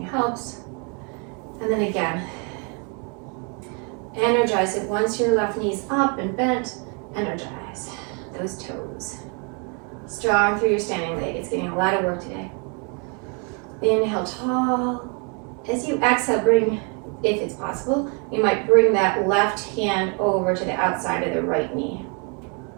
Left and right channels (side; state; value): left; quieter; 36.0 dB